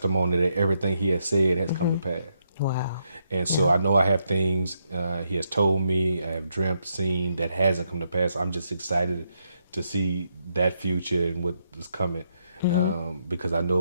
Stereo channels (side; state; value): both; inverted; correlation -0.79